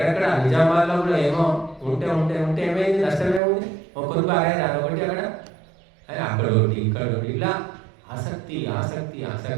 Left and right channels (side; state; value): left; drops out; at 3.4 s